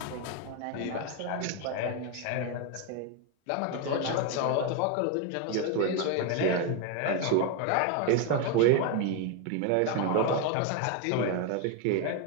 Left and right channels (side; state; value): both; different; correlation 0.01